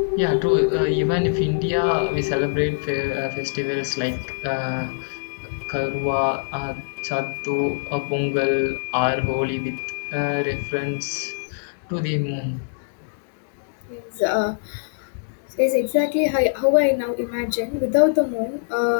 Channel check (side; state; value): right; silent; digital silence